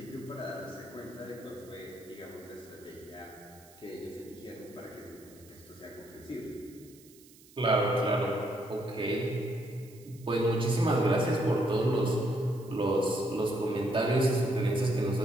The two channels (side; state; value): right; noise; hiss, 24 dB below the sound